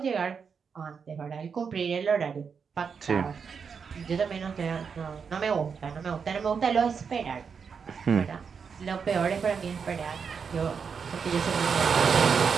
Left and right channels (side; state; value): left; quieter; 6.1 dB